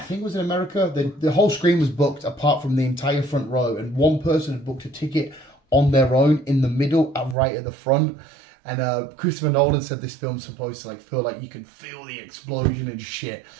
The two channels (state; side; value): drops out; left; at 7.4 s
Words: think it was in America, the whole screen was booked apart from the entire front row, and one person had booked a ticket on their own in the middle, right at the front. And Christopher Nolan said this film's supposed to feel like you can feel the explosion and shit.